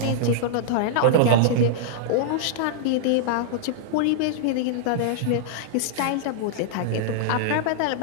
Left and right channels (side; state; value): both; different; correlation -0.02